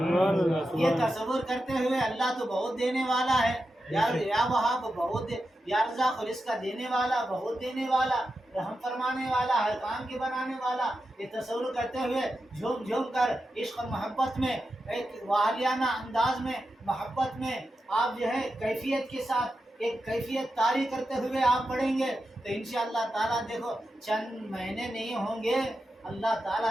یہ تصور کرتے ہوئے اللہ تو بہت دینے والا ہے, یا وہاب بہت یا رزاق رزق کا دینے والا, بہت دینے والا, رحم فرمانے والا, ہر کام کے بنانے والا. یہ تصور کرتے ہوئے جھوم جھوم کر عشق اور محبت میں, ایک والیانہ انداز میں, محبت میں آپ جو ہے کیفیت کے ساتھ ایک کیفیت طاری کرتے ہوئے آپ پڑھیں گے تو انشاءاللہ تعالیٰ دیکھو چند مہینے نہیں ہوں گے, اللہ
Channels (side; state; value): both; normal; correlation 0.89